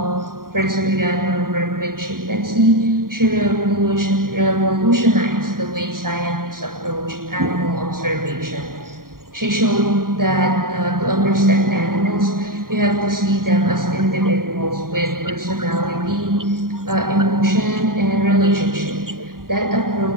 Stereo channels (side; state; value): left; late; 0.91 ms